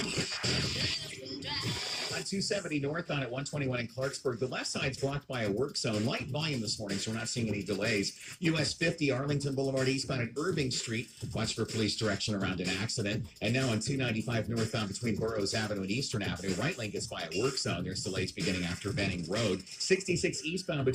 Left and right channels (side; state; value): both; identical; correlation 1.00